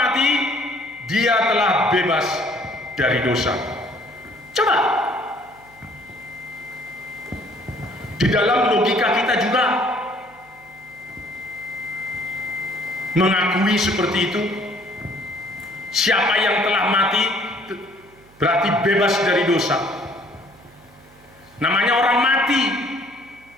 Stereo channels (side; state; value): right; noise; hum, 29 dB below the sound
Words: dia telah bebas dari dosa. Coba, di dalam logika kita juga mengakui seperti itu. Siapa yang telah mati berarti bebas dari dosa. Namanya orang mati,